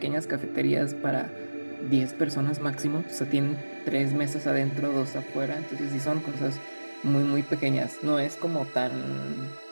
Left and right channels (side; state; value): both; inverted; correlation -1.00